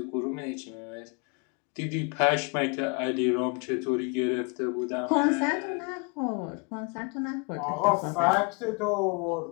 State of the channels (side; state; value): right; quieter; 32.4 dB